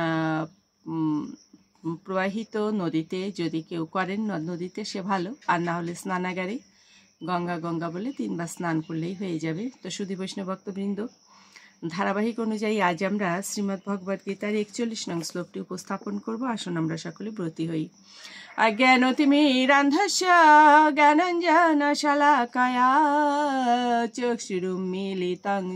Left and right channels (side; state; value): both; identical; correlation 1.00